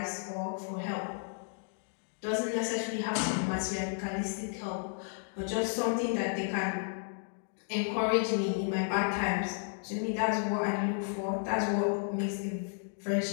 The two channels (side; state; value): right; silent; digital silence